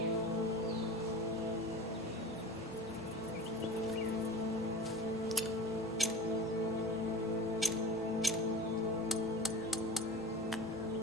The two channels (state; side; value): normal; both; correlation 0.35